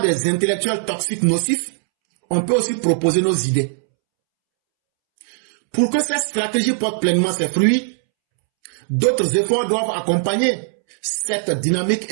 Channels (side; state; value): left; silent; 66 dB below the other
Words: des intellectuels toxiques nocifs, on peut aussi proposer nos idées. Pour que cette stratégie porte pleinement ses fruits, d'autres efforts doivent accompagner cette dynamique